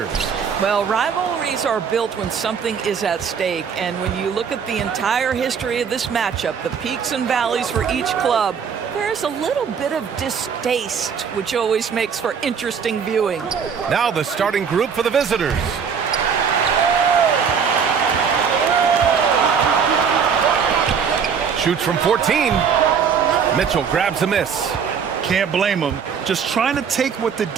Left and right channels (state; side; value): quieter; left; 6.7 dB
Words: Well, rivalries are built when something is at stake, and when you look at the entire history of this matchup, the peaks and valleys for each club, there's a little bit of distaste, which always makes for interesting viewing. Now the starting group for the visitors. Shoots from 14. Mitchell grabs a miss. Can't blame him. Just trying to take what the